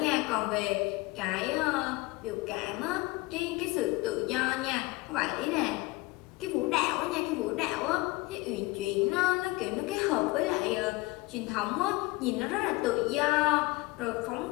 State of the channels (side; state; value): right; quieter; 21.8 dB